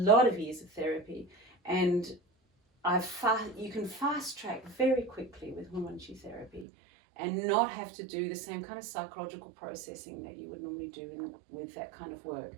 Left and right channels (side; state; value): left; drops out; at 6.7 s